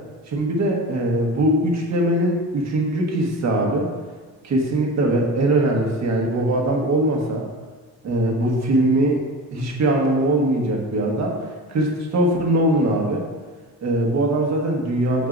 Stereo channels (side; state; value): both; normal; correlation 0.32